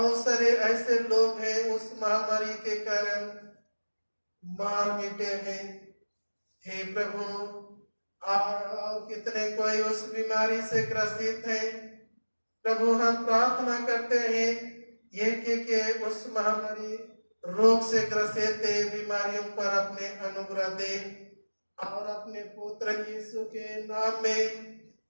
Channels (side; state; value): both; inverted; correlation -1.00